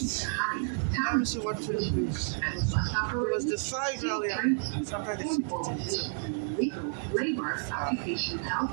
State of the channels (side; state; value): left; silent; digital silence